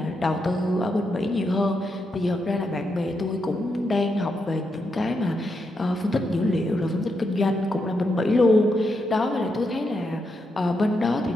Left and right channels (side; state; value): both; normal; correlation 0.83